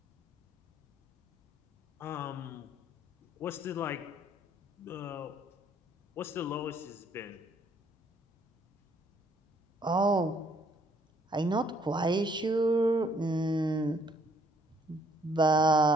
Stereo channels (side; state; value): both; normal; correlation 0.65